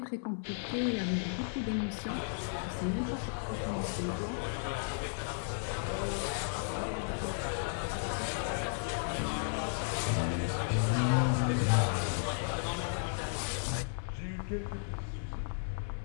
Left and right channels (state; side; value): silent; right; digital silence